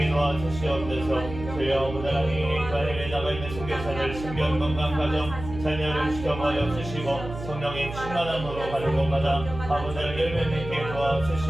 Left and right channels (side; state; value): right; noise; hum, 10 dB below the sound